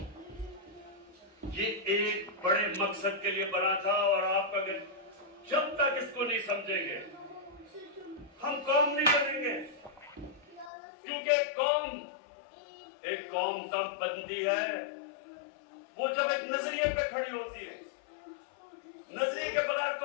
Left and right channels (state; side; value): drops out; right; at 10.7 s